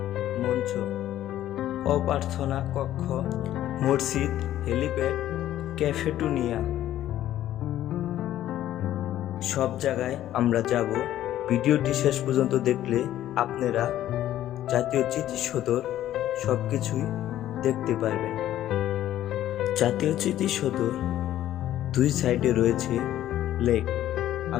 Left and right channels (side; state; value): right; quieter; 12.8 dB